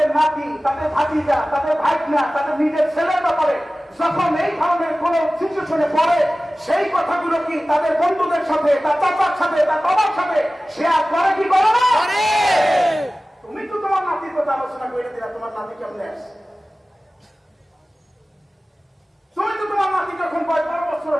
নাতি, তাদের ভাতিজা, তাদের ভাইনা, তাদের নিজের ছেলের ব্যাপারে যখন এই ধরনের কোন সিচুয়েশনে পড়ে, সেই কথাগুলো কি তাদের বন্ধুদের সাথে, তার চাচার সাথে, তার বাবার সাথে শেয়ার করে কি করে না? তুমি তো তোমার নাতির কথা আলোচনা করে দিলা, তোমার নাতি কেমনে আসছে? তুমি তো তোমার নাতি যখন 12 বছর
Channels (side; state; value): both; normal; correlation 0.97